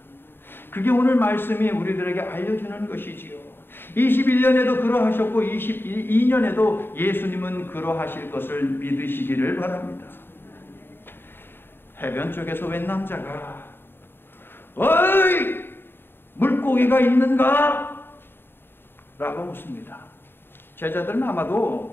그게 오늘 말씀이 우리들에게 알려주는 것이지요. 21년에도 그러하셨고 22년에도 예수님은 그러하실 것을 믿으시기를 바랍니다. 해변 쪽에서 웬 남자가 어이! 물고기가 있는가? 라고 묻습니다. 제자들은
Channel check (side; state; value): right; late; 0.10 ms